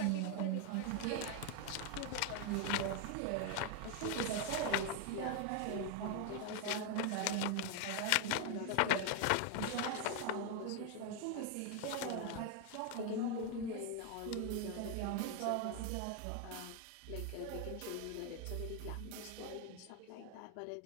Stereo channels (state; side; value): different; both; correlation 0.01